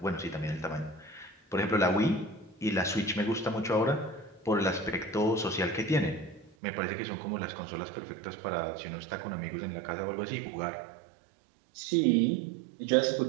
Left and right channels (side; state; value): left; drops out; at 6.6 s